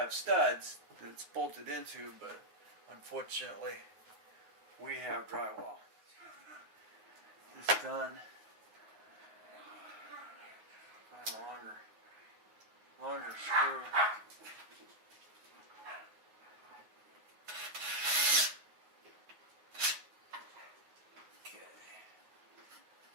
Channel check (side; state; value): left; late; 9.5 ms